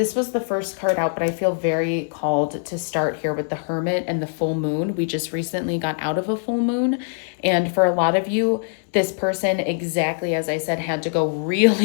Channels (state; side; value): silent; right; 63 dB below the other